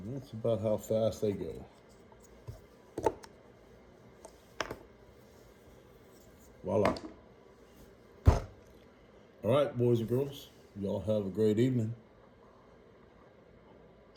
And that's about how fast they go. Voila. All right, boys and girls, y'all have a great evening.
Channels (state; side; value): identical; both; correlation 1.00